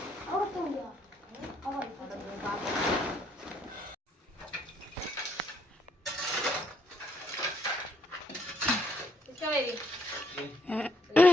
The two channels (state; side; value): normal; both; correlation 0.70